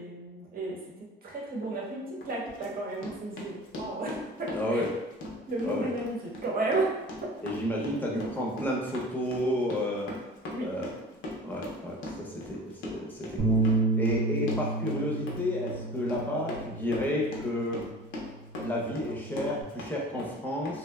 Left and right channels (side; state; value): both; normal; correlation 0.41